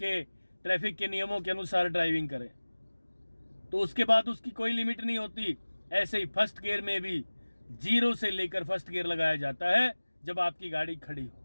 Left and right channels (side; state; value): both; inverted; correlation -1.00